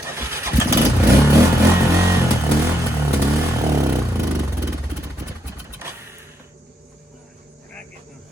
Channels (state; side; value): normal; both; correlation 0.78